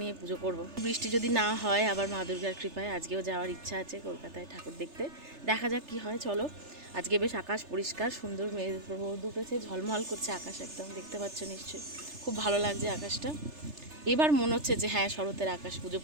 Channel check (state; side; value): late; left; 3.3 ms